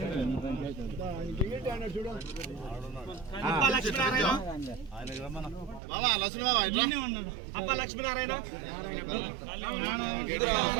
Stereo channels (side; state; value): left; drops out; at 5.8 s